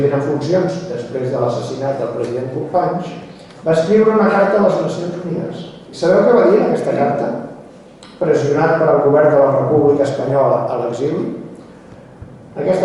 en funcions després de l'assassinat del president Companys, va escriure una carta a les Nacions Unides. I sabeu què va dir en aquesta carta? Pressionat per al govern de la República Espanyola a l'exili,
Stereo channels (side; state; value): both; identical; correlation 1.00